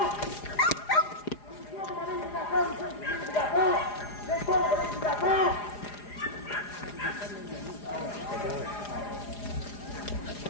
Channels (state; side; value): late; right; 4.9 ms